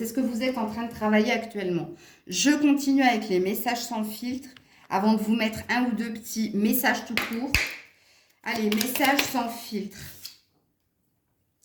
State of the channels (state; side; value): identical; both; correlation 1.00